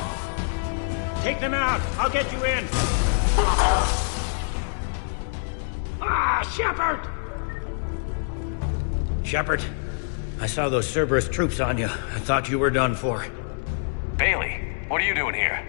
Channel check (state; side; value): silent; right; digital silence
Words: Take them out! I'll get you in! Shepard! Shepard, I saw those Cerberus troops on you. I thought you were done for. Bailey, what are you doing here?